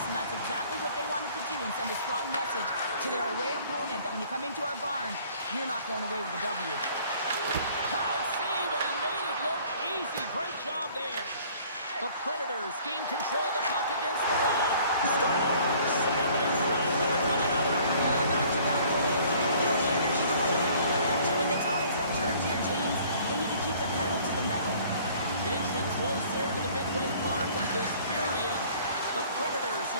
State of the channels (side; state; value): both; inverted; correlation -0.54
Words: and that's exactly what they wanted to do and send a strong message to their away opponent that when you come into our barn, you're not going away with a W. Hard save, and he made it look easy. Great job there. The Predators gain control of the puck against the wall. Scores! And they're running back with another. Back-to-back goals. You can feel the energy, the wave, the momentum, and the tides have turned here, James. They need to keep the pedal to the metal. Inching closer to the midway mark of this period. The Predators